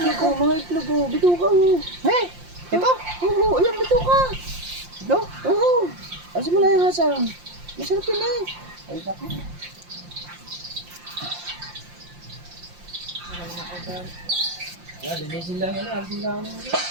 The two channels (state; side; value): late; left; 5.7 ms